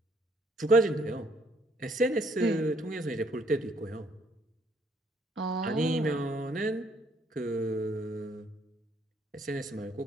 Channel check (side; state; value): both; normal; correlation 0.66